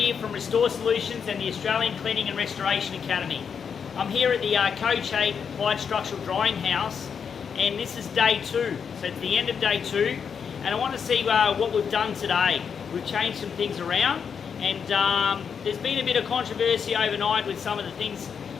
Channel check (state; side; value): quieter; right; 6.8 dB